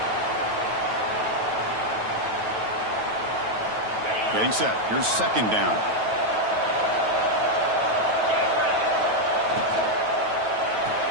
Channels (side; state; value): left; late; 9.2 ms